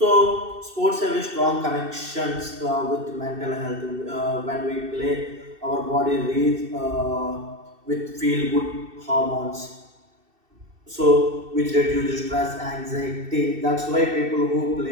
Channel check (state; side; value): late; left; 2.7 ms